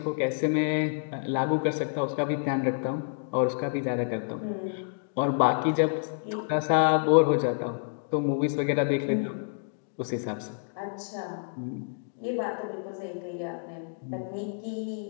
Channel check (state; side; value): silent; right; digital silence